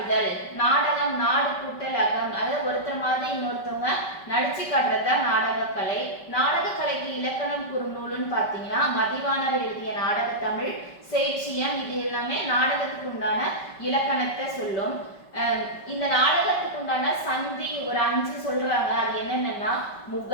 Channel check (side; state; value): right; late; 5.2 ms